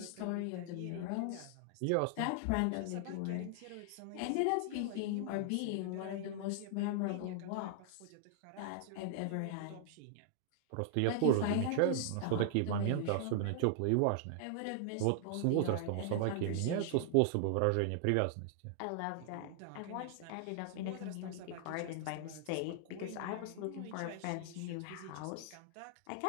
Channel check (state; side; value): different; both; correlation 0.00